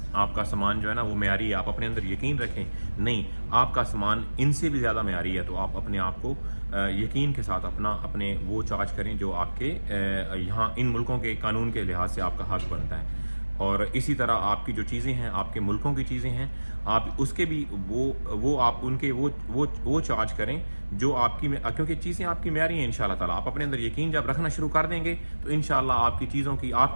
آپ کا سامان جو ہے نا وہ معیاری ہے۔ آپ اپنے اندر یقین رکھیں، نہیں آپ کا سامان ان سے بھی زیادہ معیاری ہے، تو آپ اپنے آپ کو یقین کے ساتھ اپنے وہ چارج کریں جو آپ کے یہاں ان ملکوں کے قانون کے لحاظ سے آپ کا حق بنتا ہے۔ اور اسی طرح آپ کی جو چیزیں ہیں، آپ کے ملکوں کی چیزیں ہیں، آپ اس کے بھی وہ آپ ان کے وہ چارج کریں جو آپ کی، کیونکہ چیزیں آپ کی معیاری ہیں انشاءاللہ تعالیٰ. آپ اپنے اندر یقین جب رکھنا شروع کر دیں گے تو انشاءاللہ آپ کی چیزوں کی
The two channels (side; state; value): both; inverted; correlation -1.00